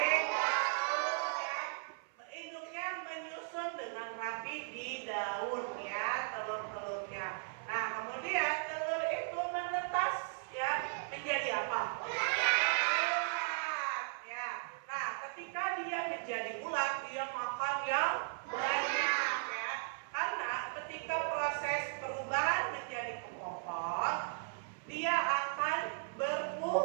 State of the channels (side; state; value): left; silent; 53 dB below the other